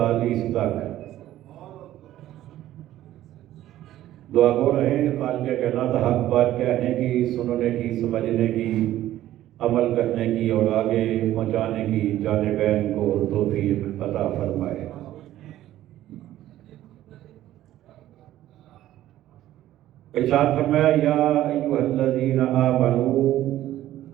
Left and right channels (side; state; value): left; quieter; 13.7 dB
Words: تک دعا گو رہیں. خالق کائنات حق بات کہنے کی، سننے کی، سمجھنے کی، عمل کرنے کی اور آگے پہنچانے کی جانبین کو توفیق عطا فرمائے. ارشاد فرمایا یا ایھا الذین آمنوا،